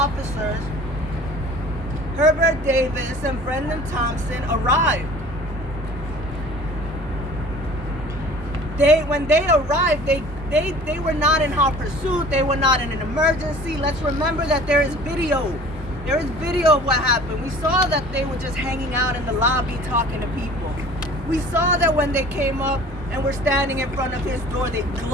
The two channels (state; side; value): normal; both; correlation 0.46